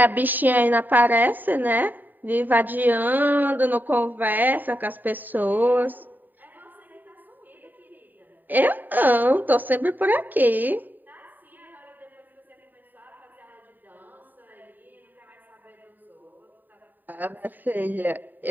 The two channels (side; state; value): left; late; 0.089 ms